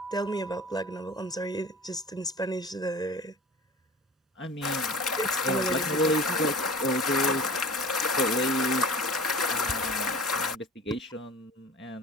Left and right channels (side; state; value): both; normal; correlation 0.40